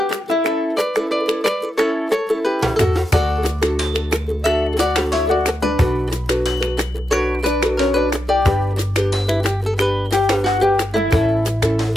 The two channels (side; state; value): both; normal; correlation 0.87